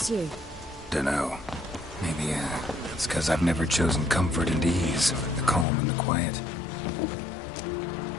you? Dunno. Maybe, it's 'cause I've never chosen comfort and ease, the calm and the quiet.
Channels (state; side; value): drops out; right; at 5.7 s